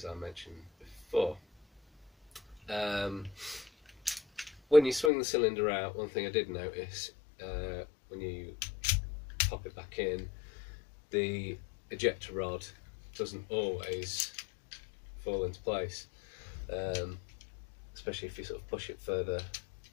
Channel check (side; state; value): right; drops out; at 5.1 s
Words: I mentioned before. When you swing the cylinder out, one thing I did notice, when you pop it back in, the ejector rod doesn't always fall into place, especially if you sort of push it further